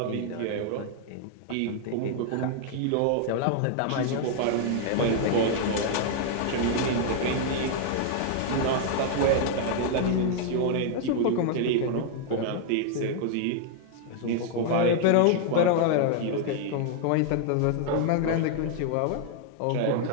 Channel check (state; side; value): different; both; correlation 0.00